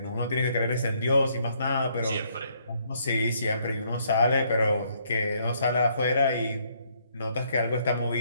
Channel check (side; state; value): both; inverted; correlation -0.70